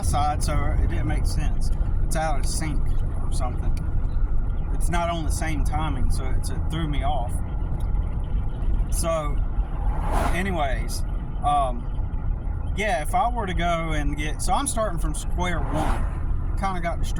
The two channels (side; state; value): both; identical; correlation 1.00